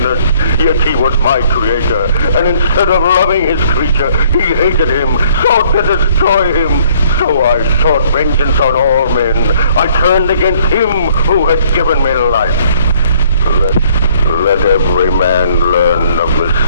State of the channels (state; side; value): inverted; both; correlation -0.61